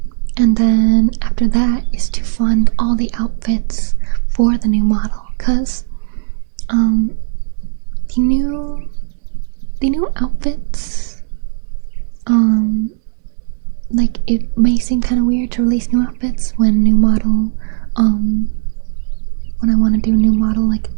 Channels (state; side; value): silent; left; digital silence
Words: And then after that is to fund all the outfits for the new model, because the new outfits, like it may seem kind of weird to release new outfits when new model, when I want to do a new model like